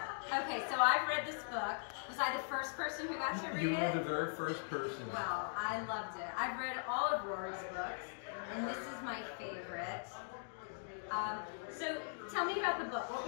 Okay, so I've read this book. Was I the first person who got to read it? You were the very first person. Well, I loved it. I've read all of Rory's books, and this is my favorite. So tell me about the book. What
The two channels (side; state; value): right; silent; digital silence